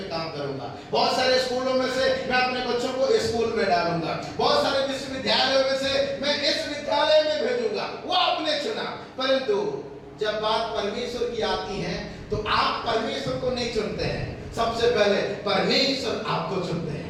काम करूंगा, बहुत सारे स्कूलों में से मैं अपने बच्चों को इस स्कूल में डालूंगा, बहुत सारे विश्वविद्यालयों में से मैं इस विद्यालय में भेजूंगा। वो आपने चुना। परंतु जब बात परमेश्वर की आती है तो आप परमेश्वर को नहीं चुनते हैं, सबसे पहले परमेश्वर आपको चुनते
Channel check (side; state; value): both; identical; correlation 1.00